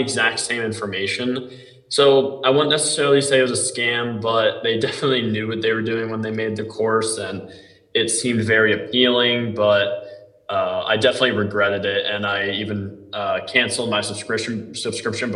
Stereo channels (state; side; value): identical; both; correlation 1.00